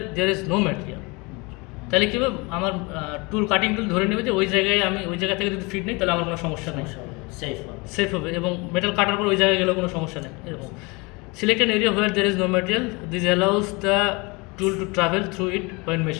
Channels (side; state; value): right; quieter; 26.9 dB